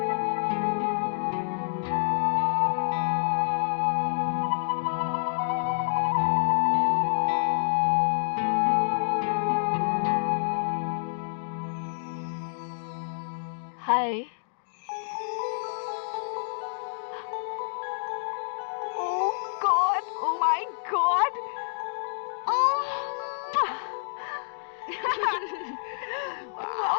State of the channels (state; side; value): silent; right; digital silence